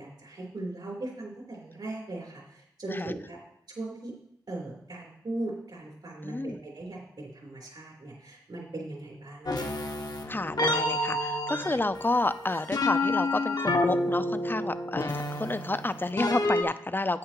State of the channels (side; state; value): both; normal; correlation 0.72